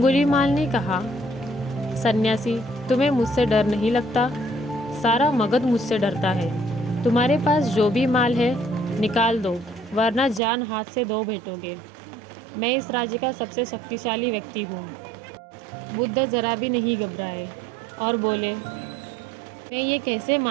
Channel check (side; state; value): left; drops out; at 10.4 s